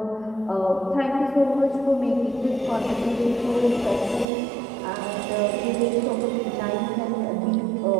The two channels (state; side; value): drops out; left; at 4.2 s